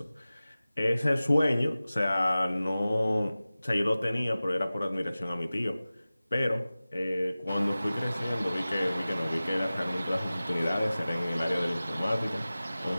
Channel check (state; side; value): inverted; both; correlation -0.97